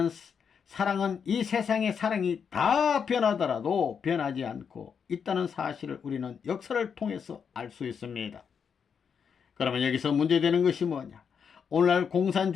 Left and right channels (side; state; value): right; quieter; 6.8 dB